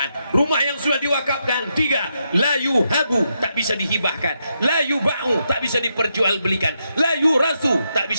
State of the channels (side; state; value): both; inverted; correlation -0.82